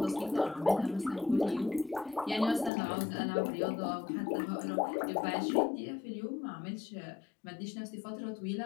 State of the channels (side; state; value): right; drops out; at 2.7 s